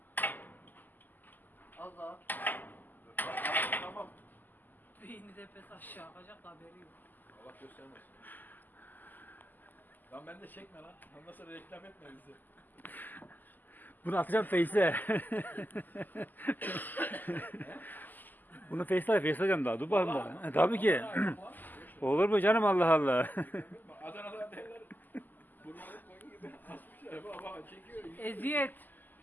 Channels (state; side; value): late; right; 0.086 ms